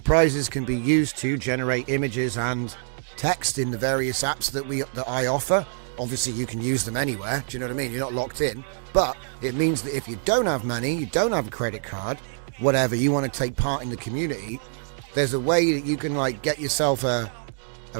can be used to generate images and text in the various apps that I offer. Obviously, you can use them anywhere. Do you know what I mean? You're not locked in. But it means that if you don't have money, you don't have a credit card, whatever, you want to take part in the community, there's a way that you can like get yourself a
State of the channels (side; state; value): left; silent; digital silence